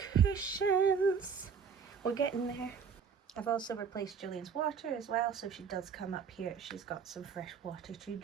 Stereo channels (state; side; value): quieter; left; 6.4 dB